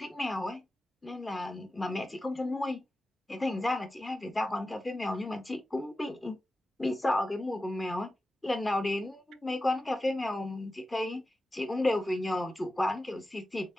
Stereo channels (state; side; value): normal; both; correlation 0.93